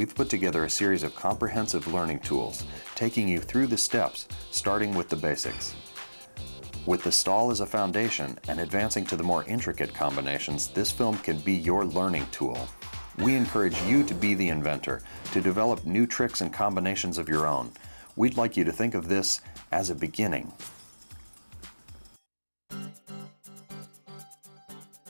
put together a series of comprehensive learning tools, taking you through the steps, starting with the basics. With the stall as a foundation and advancing to the more intricate combinations, this film can be your learning tool. We encourage you to be the inventor, to develop new tricks and combinations of your own. We'd like you to think of this as a beginning.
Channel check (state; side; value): inverted; both; correlation -1.00